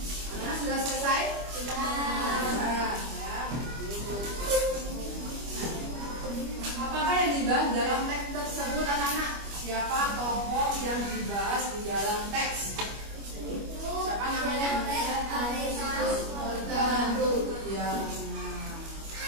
Sudah selesai? Sudah. Apakah yang dibahas dalam teks tersebut anak-anak? Siapa tokoh yang dibahas di dalam teks? Siapa namanya? Ya.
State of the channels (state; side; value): late; left; 25 ms